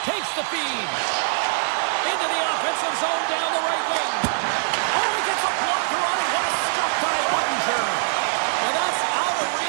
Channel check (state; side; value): silent; left; 60 dB below the other